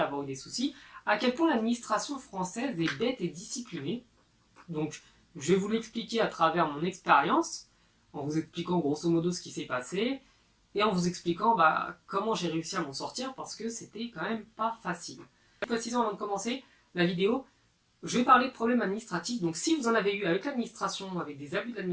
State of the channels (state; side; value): identical; both; correlation 1.00